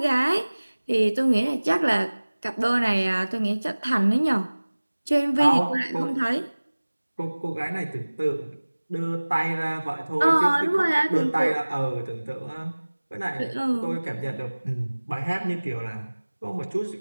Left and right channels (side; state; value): both; inverted; correlation -1.00